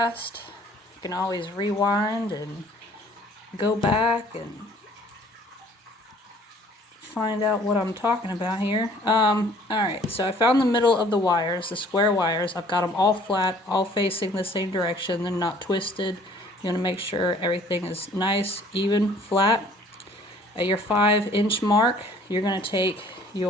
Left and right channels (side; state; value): both; normal; correlation 0.55